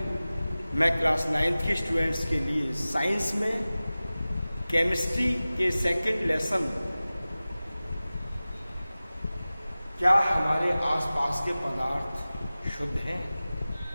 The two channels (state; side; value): inverted; both; correlation -0.97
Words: मैं क्लास 9th के स्टूडेंट्स के लिए साइंस में केमिस्ट्री के सेकंड लेसन क्या हमारे आसपास के पदार्थ शुद्ध हैं,